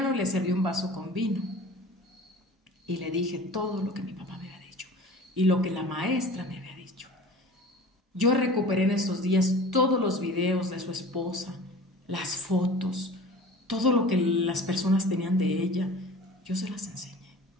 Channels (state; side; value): normal; both; correlation 0.41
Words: le serví un vaso con vino y le dije todo lo que mi papá me había dicho y lo que la maestra me había dicho. Yo recuperé en estos días todos los videos de su esposa, las fotos, todo lo que las personas tenían de ella. Yo se las enseñé.